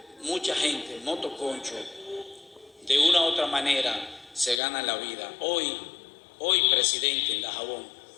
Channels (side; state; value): right; drops out; at 4.6 s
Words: mucha gente, motoconcho, de una u otra manera se gana la vida. Hoy, presidente, en Dajabón,